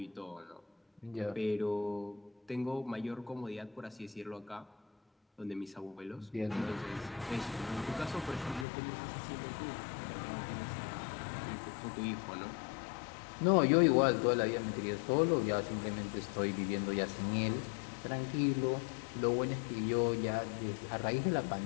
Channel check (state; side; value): drops out; right; at 8.7 s